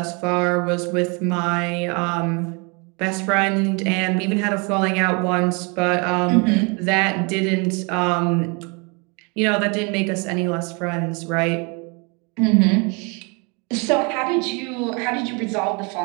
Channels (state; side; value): quieter; left; 31.8 dB